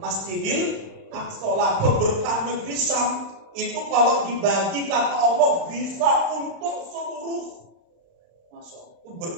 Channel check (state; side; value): late; left; 36 ms